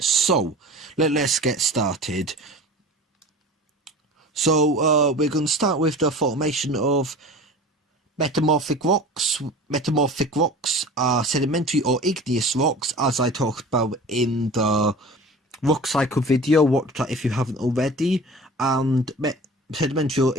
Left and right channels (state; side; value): normal; both; correlation 0.39